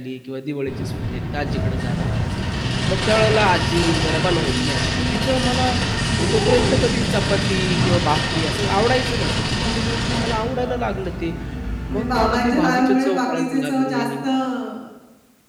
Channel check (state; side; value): identical; both; correlation 1.00